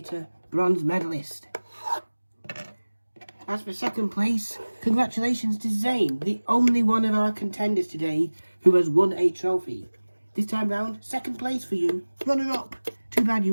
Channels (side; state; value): both; inverted; correlation -1.00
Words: bronze medalist. As for second place, congratulations to Zane, the only one of our contenders today who has won a trophy. This time round, second place for you, runner-up. Too bad